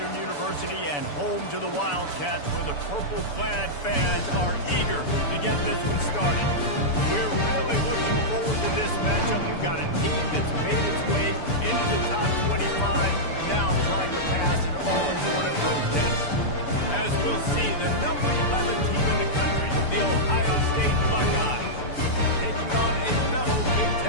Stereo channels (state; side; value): late; right; 6.9 ms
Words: University and home to the Wildcats, where the purple-clad fans are eager to get this one started. We're really looking forward to this matchup. You've got a team that's made its way into the top 25, now trying to pass an all-important road test. As we'll see, the number 11 team in the country, the Ohio State Buckeyes, taking on a fellow Big